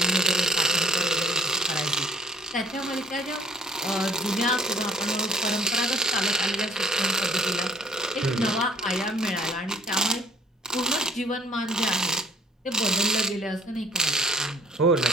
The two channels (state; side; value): normal; both; correlation 0.58